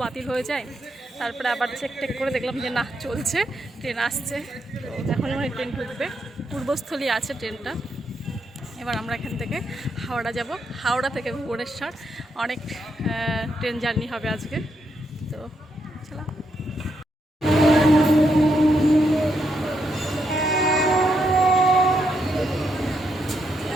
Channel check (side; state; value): both; normal; correlation 0.79